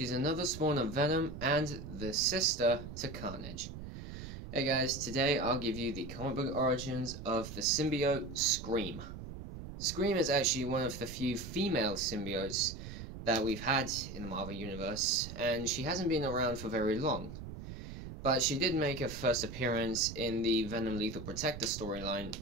another spawn of Venom and the sister to Carnage. Hey guys, today I'll give you the comic book origins of the symbiote Scream. Scream is actually one of the few female symbiotes that we've had in the Marvel Universe, and she hasn't been around for very long. But she did make her first appearance in the Venom Lethal Protector storyline,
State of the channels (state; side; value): noise; right; rumble, 10 dB below the sound